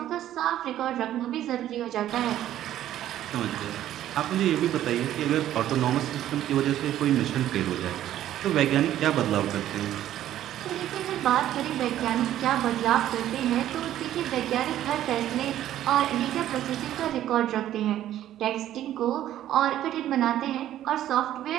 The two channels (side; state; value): left; quieter; 12.3 dB